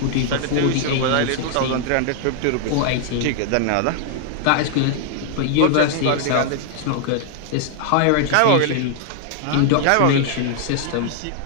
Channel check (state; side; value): different; both; correlation 0.00